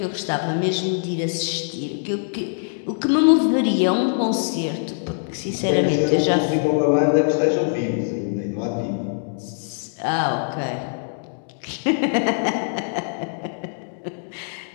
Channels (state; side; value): silent; right; digital silence